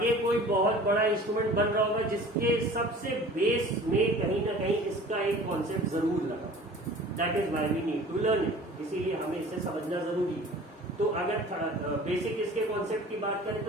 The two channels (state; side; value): normal; both; correlation 0.44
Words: कोई बहुत बड़ा इंस्ट्रूमेंट बन रहा होगा जिसके सबसे बेस में कहीं ना कहीं इसका एक कॉन्सेप्ट जरूर लगा. That is why we need to learn it. इसीलिए हमें इसे समझना जरूरी है. तो अगर बेसिक इसके कॉन्सेप्ट की बात करें